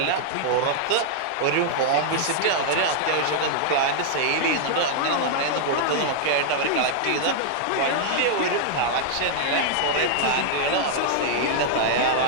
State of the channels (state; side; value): different; both; correlation -0.01